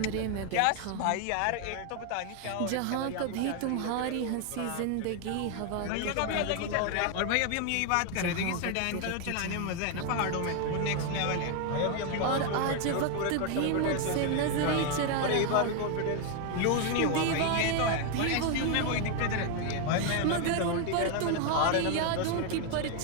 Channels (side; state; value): both; different; correlation 0.01